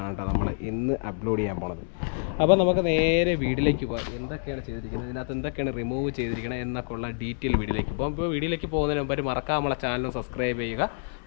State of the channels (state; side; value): silent; right; digital silence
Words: കേട്ടോ നമ്മൾ ഇന്ന് അപ്ലോഡ് ചെയ്യാൻ പോണത്. അപ്പോൾ നമുക്ക് നേരെ വീഡിയോയിലേക്ക് പോകാം. എന്തൊക്കെയാണ് ചെയ്തിരിക്കുന്നത്, ഇതിനകത്ത് എന്തൊക്കെയാണ് റിമൂവ് ചെയ്തിരിക്കുന്നത് എന്നൊക്കെ ഉള്ള ഡീറ്റെയിൽ വീഡിയോയിലേക്ക് പോകാം. ഇപ്പോൾ വീഡിയോയിലേക്ക് പോകുന്നതിന് മുമ്പ് മറക്കാതെ നമ്മളെ ചാനൽ സബ്സ്ക്രൈബ് ചെയ്യുക,